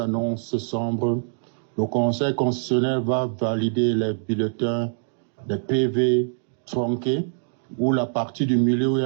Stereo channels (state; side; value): silent; left; 63 dB below the other